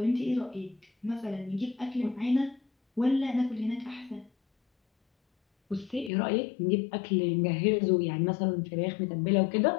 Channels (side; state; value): right; drops out; at 6.1 s